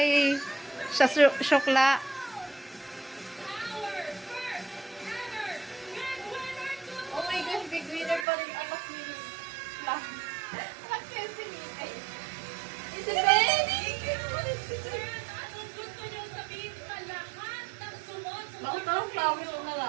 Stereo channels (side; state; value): left; drops out; at 8.2 s